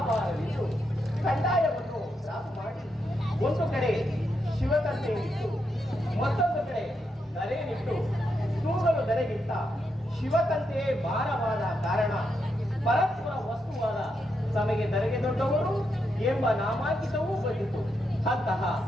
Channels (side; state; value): both; normal; correlation 0.82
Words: ಕಂದಾಯವನ್ನು ರಾಸು ಮಾಡಿ ಒಂದು ಕಡೆ ಶಿವತಂತೆ ಇಟ್ಟು ಮತ್ತೊಂದು ಕಡೆ ಧರೆಯನ್ನಿಟ್ಟು ತೂಗಲು ಧರೆಗಿಂತ ಶಿವತಂತೆಯೇ ಭಾರವಾದ ಕಾರಣ ಪರಸ್ಪರ ವಸ್ತುವಾದ ತಮಗೆ ಧರೆಗೆ ದೊಡ್ಡವರು ಎಂಬ ನಾಮಾಂಕಿತವೂ ಬಂದಿತು. ಅಂತಹ